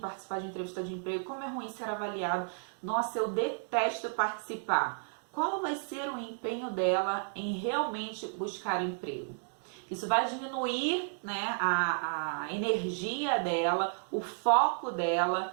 participar de entrevista de emprego, como é ruim ser avaliado, nossa, eu detesto participar. Qual vai ser o empenho dela em realmente buscar emprego? Isso vai diminuir, né, a energia dela, o foco dela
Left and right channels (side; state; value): left; silent; digital silence